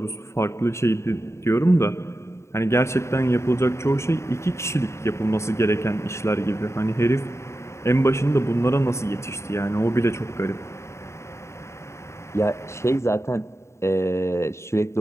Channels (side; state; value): right; late; 0.13 ms